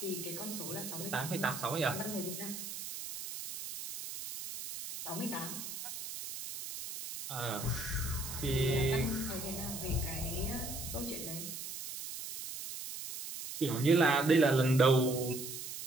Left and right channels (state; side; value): noise; right; hiss, 8 dB below the sound